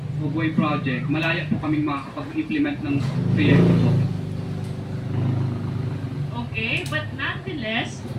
of way project, malaya po kaming makakapag-implement ng proyekto po. Okay, but nonetheless,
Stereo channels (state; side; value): identical; both; correlation 1.00